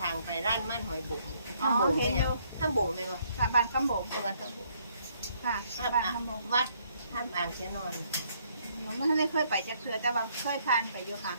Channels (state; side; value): inverted; both; correlation -0.68